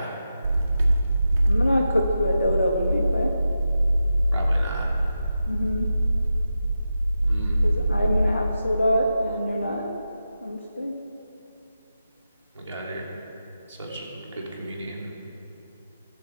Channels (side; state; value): both; inverted; correlation -0.90